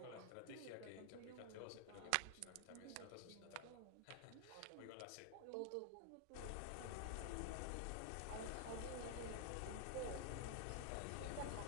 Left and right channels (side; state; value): both; different; correlation 0.00